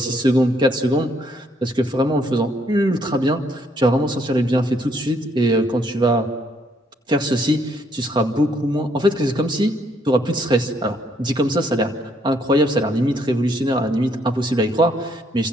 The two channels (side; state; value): both; normal; correlation 0.69